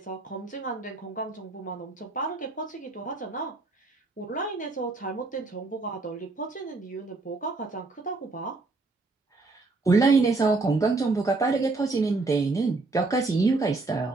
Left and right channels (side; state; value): left; quieter; 3.6 dB